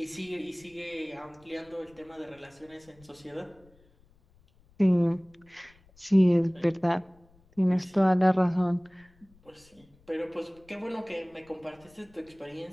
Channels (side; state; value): left; noise; rumble, 30 dB below the sound